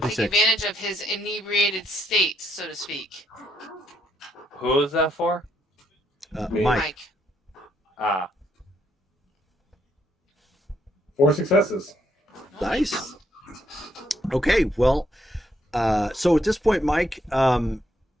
take 6. advantage of his inebriated state, so to speak. Who is that for? Me. Mike. Ah, 4 successes. Nice. Okay, well, so at this point, Mike,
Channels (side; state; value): both; normal; correlation 0.74